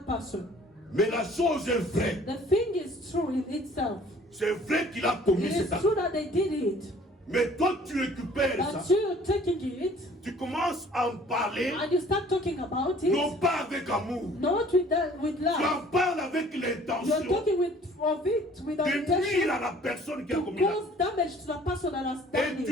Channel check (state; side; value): normal; both; correlation 0.53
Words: person. Mais la chose est vraie. The thing is true in itself. C'est vrai qu'il a commis It cet is acte. true that they did it, Mais toi, tu récupères but ça. you're taking it Tu commences à en parler, and you start talking about non it, pas avec amour. not with Tu love. en parles avec You're l'intention talking of it with the de nuire intention à la personne qui a to commis l'acte. cause damage to the person that has done Et tu